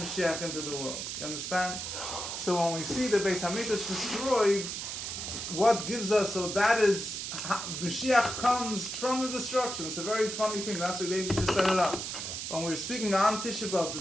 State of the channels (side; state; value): right; noise; hiss, 5 dB below the sound